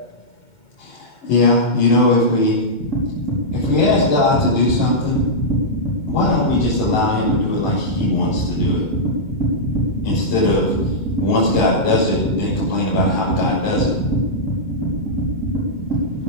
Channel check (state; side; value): late; right; 2.2 ms